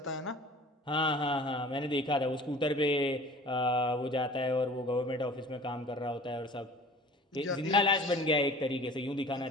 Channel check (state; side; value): normal; both; correlation 0.45